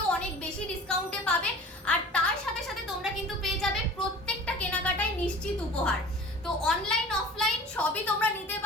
অনেক বেশি ডিসকাউন্টে পাবে। আর তার সাথে সাথে তোমরা কিন্তু পেয়ে যাবে প্রত্যেকটা কেনাকাটায় নিশ্চিত উপহার। তো অনলাইন অফলাইন সবই তোমরা নিতে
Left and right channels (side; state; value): both; normal; correlation 0.42